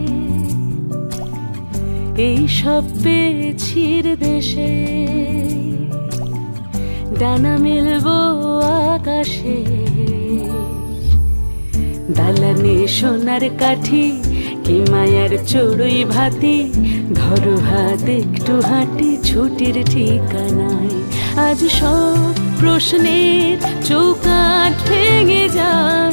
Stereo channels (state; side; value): inverted; both; correlation -1.00